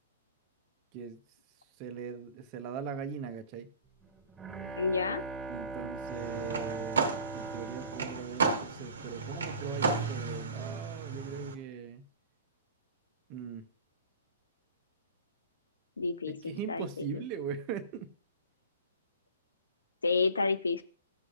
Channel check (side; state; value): both; inverted; correlation -0.43